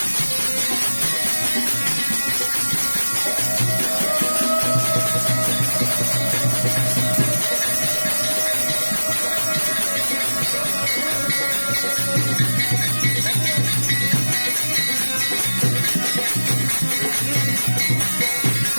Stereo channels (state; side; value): inverted; both; correlation -1.00